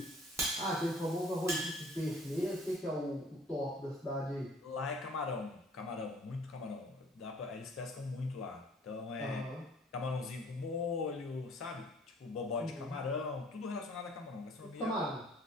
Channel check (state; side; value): normal; both; correlation 0.54